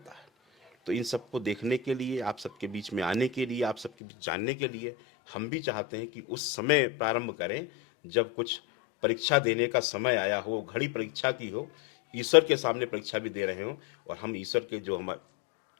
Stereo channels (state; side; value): drops out; right; at 3.9 s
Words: है। तो इन सबको देखने के लिए, आप सबके बीच में आने के लिए, आप सबके बीच जानने के लिए हम भी चाहते हैं कि उस समय प्रारंभ करें जब कुछ परीक्षा देने का समय आया हो, घड़ी परीक्षा की हो, ईश्वर के सामने परीक्षा भी दे रहे हो, और हम ईश्वर के जो हम